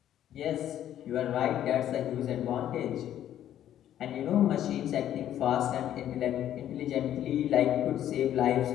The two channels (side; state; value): right; quieter; 11.3 dB